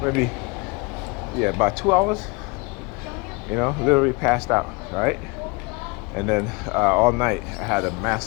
about 2 hours. Literally passed out, right? And then all night I had a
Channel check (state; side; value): quieter; right; 26.8 dB